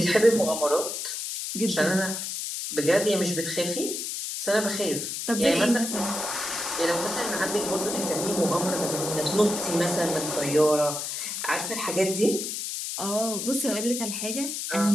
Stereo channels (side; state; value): left; noise; hiss, 4 dB below the sound